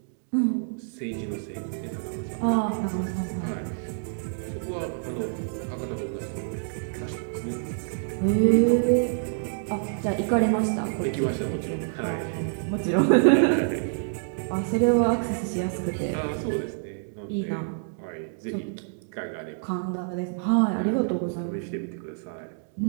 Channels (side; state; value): left; silent; digital silence